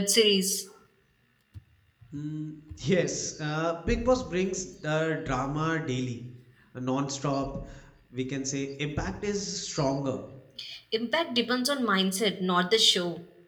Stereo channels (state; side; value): identical; both; correlation 1.00